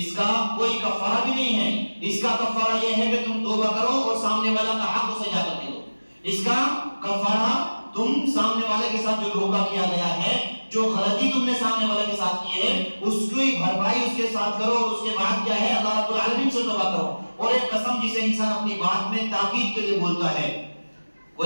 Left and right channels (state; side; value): inverted; both; correlation -1.00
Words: کا کوئی کفارہ بھی نہیں ہے. اس کا کفارہ یہ ہے کہ تم توبہ کرو اور سامنے والا کا حق اسے جا کر دے دو. اس کا کفارہ تم سامنے والے کے ساتھ جو دھوکہ کیا گیا ہے، جو غلطی تم نے سامنے والے کے ساتھ کی ہے، اس کی بھرپائی اس کے ساتھ کرو، اور اس کے بعد کیا ہے اللہ رب العالمین سے توبہ کرو. اور ایک قسم جسے انسان اپنی بات میں تاکید کے لیے بولتا ہے،